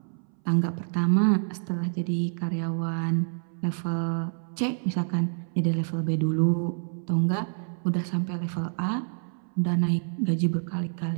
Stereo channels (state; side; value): silent; left; 60 dB below the other